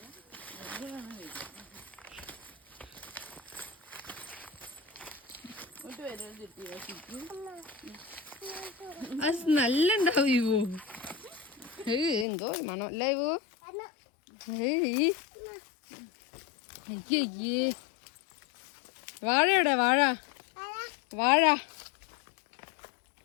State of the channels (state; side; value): drops out; right; at 12.2 s